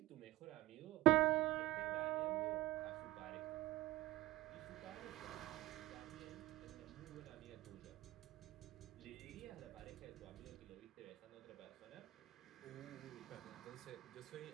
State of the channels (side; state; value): left; quieter; 16.8 dB